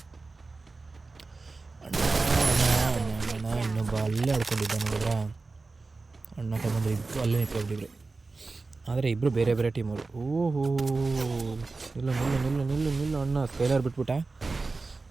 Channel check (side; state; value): left; quieter; 3.8 dB